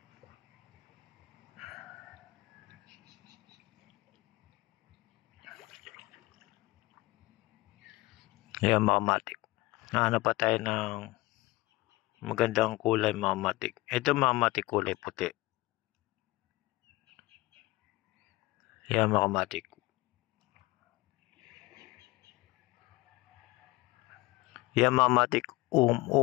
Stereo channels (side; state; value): right; quieter; 20.6 dB